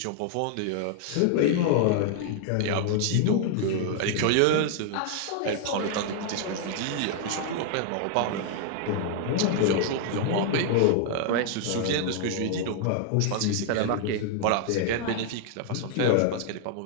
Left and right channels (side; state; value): both; different; correlation 0.00